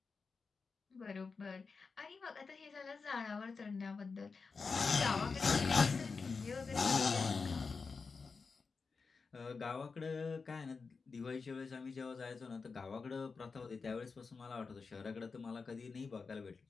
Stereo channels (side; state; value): right; quieter; 4.8 dB